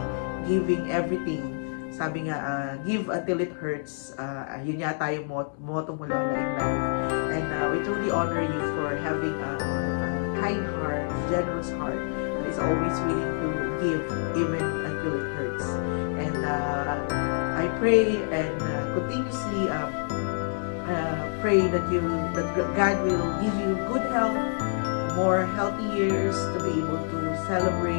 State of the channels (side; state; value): right; silent; digital silence